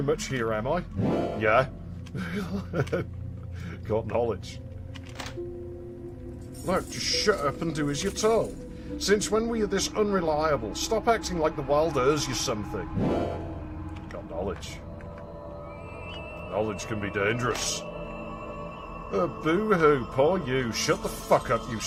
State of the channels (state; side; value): identical; both; correlation 1.00